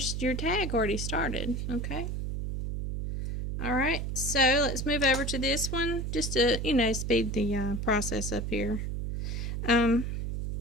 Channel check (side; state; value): right; noise; hum, 3 dB below the sound